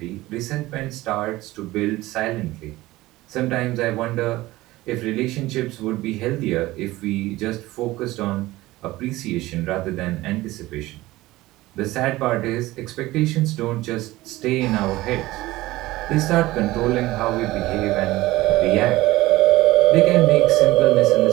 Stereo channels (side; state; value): left; quieter; 18.2 dB